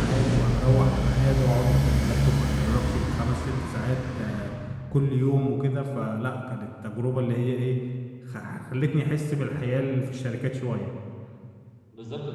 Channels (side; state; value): both; identical; correlation 1.00